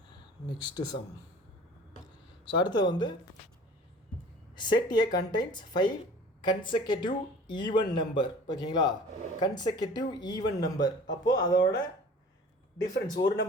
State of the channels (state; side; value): normal; both; correlation 0.45